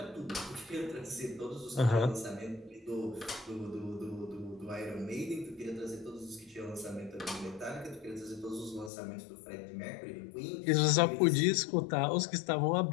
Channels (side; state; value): right; drops out; at 8.9 s